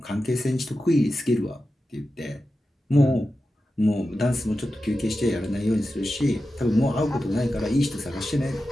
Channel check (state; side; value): normal; both; correlation 0.92